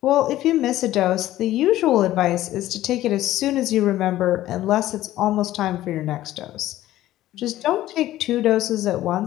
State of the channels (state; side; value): quieter; right; 14.6 dB